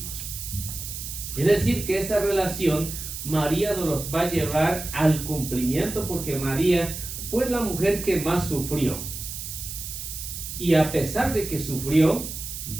Es decir, que esa relación María nos los va a llevar al cumplimiento, porque María fue la mujer que más sufrió. Y a pesar de que sufrió,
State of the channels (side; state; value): right; noise; hiss, 8 dB below the sound